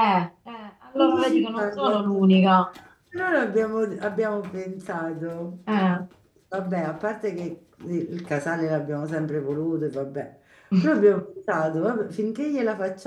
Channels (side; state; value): both; identical; correlation 1.00